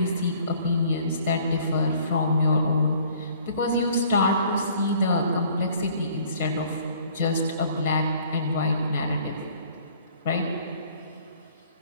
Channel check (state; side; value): inverted; both; correlation -0.55